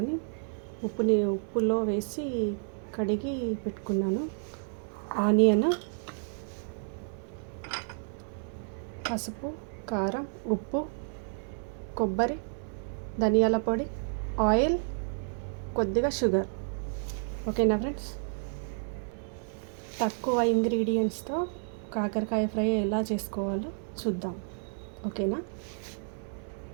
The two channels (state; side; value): silent; left; digital silence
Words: ఉప్పులో వేసి కడిగి పెట్టుకున్నాను. ఆనియన్, పసుపు, కారం, ఉప్పు, కొబ్బరి, ధనియాల పొడి, ఆయిల్, కొద్దిగా షుగర్. ఓకేనా ఫ్రెండ్స్? తక్కువ ఇంగ్రీడియంట్స్తో కాకరకాయ ఫ్రై ఎలా చేసుకోవాలో చూద్దాం. ఓకేనా?